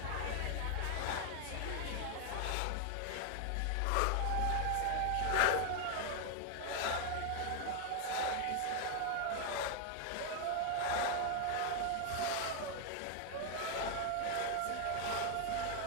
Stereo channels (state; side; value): different; both; correlation 0.00